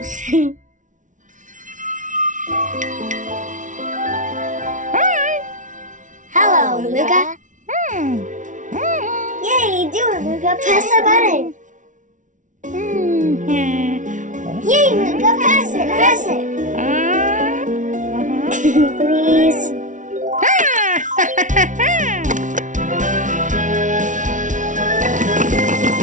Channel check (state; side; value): late; left; 0.37 ms